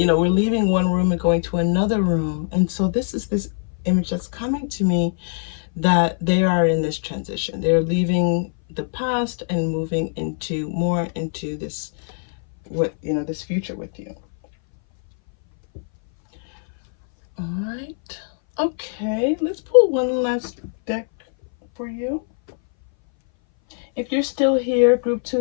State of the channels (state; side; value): silent; right; 60 dB below the other